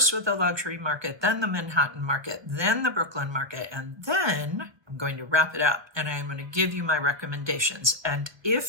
with the luxury market, then the Manhattan market, then the Brooklyn market, and then I'm going to wrap it up and I'm going to give you my recommendations. And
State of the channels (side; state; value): left; late; 1.2 ms